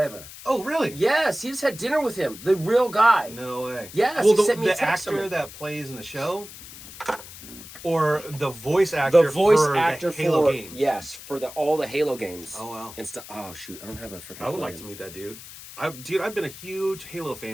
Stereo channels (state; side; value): noise; left; hiss, 15 dB below the sound